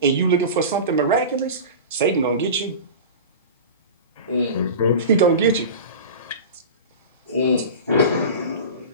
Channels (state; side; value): inverted; both; correlation -0.30